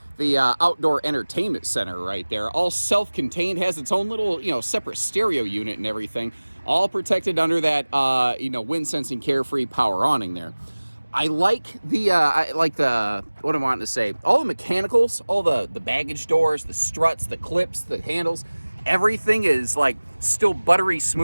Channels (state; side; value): inverted; both; correlation -1.00